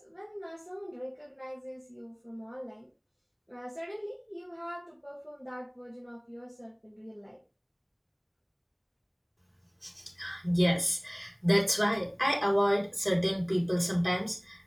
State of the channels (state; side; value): identical; both; correlation 1.00